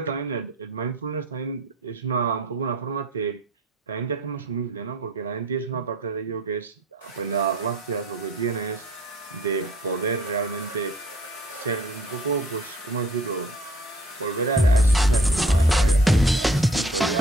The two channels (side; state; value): both; normal; correlation 0.52